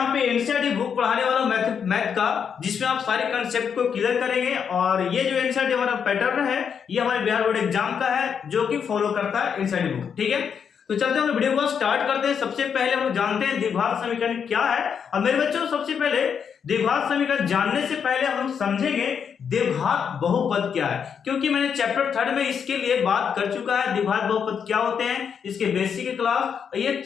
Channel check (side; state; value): right; quieter; 7.1 dB